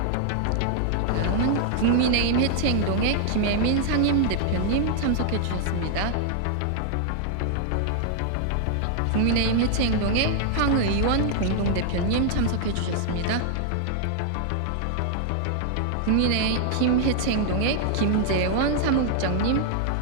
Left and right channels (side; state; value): both; different; correlation 0.00